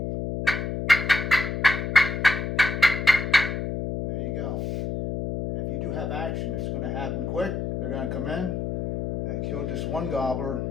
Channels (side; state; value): left; noise; hum, 3 dB below the sound